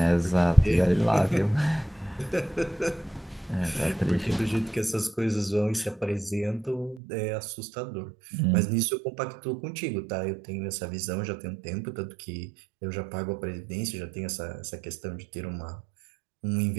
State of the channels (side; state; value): left; drops out; at 7.0 s